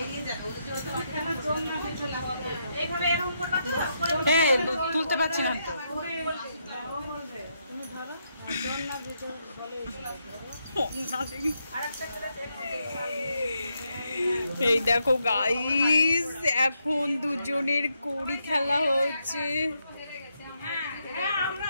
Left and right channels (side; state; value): both; inverted; correlation -0.80